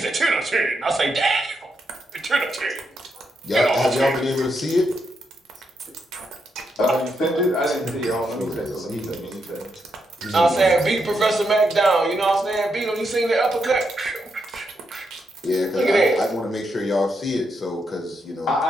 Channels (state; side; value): normal; both; correlation 0.81